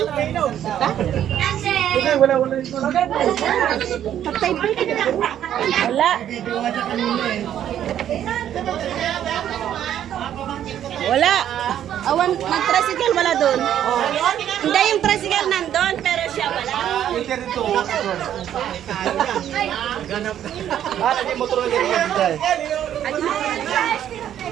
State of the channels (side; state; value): left; quieter; 10.6 dB